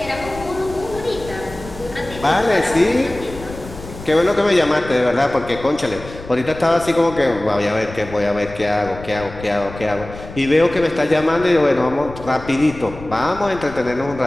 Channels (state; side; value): noise; left; rumble, 14 dB below the sound